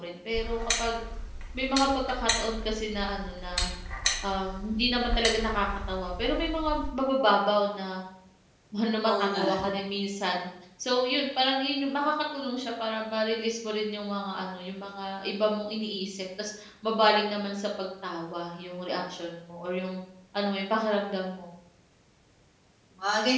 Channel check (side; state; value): both; identical; correlation 1.00